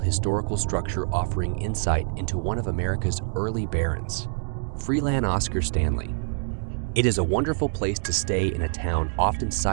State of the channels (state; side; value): silent; left; digital silence